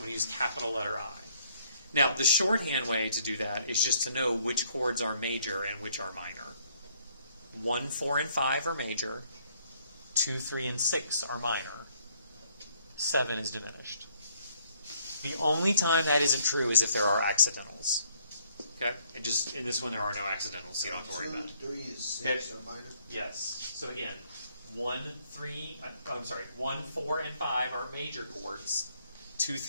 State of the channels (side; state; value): both; inverted; correlation -0.66